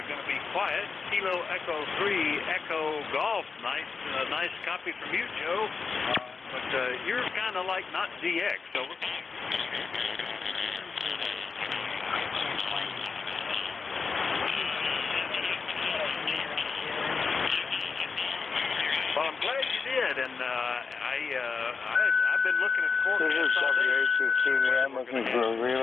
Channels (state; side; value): quieter; right; 4.9 dB